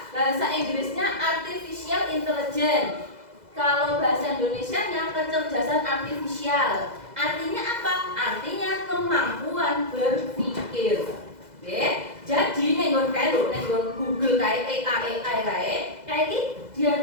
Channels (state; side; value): late; left; 2.0 ms